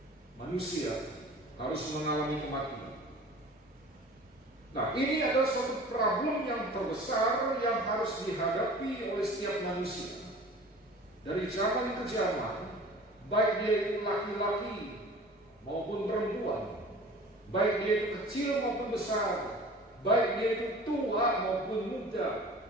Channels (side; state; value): both; normal; correlation 0.43